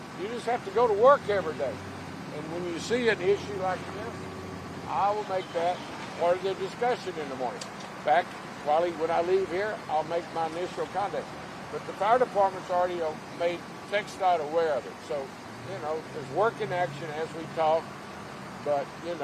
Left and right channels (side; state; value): both; identical; correlation 1.00